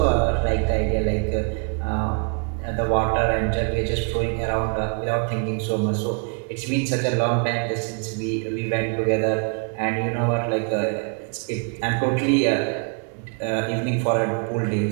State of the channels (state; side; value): quieter; left; 37.8 dB